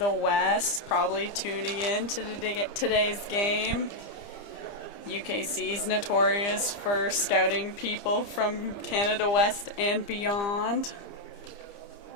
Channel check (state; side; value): late; right; 30 ms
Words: West, probably tuning in to today's game. UKC is notorious for scouting people from Canada West and beyond.